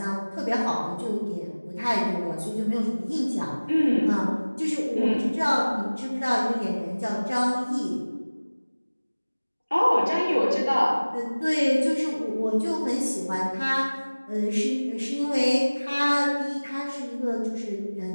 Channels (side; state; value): both; inverted; correlation -1.00